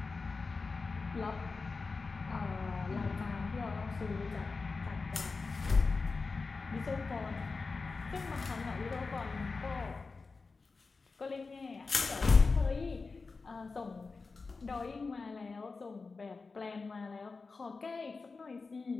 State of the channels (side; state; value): right; quieter; 4.2 dB